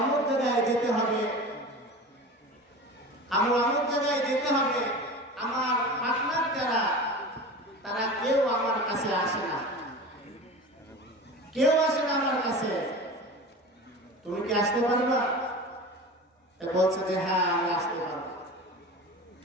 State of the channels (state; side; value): normal; both; correlation 0.33